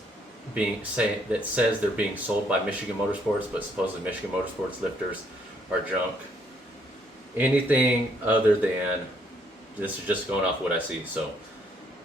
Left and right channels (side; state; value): both; normal; correlation 0.68